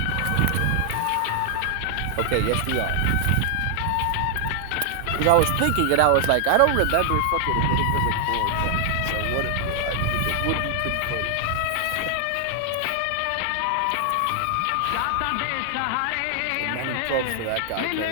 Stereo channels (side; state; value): both; different; correlation 0.00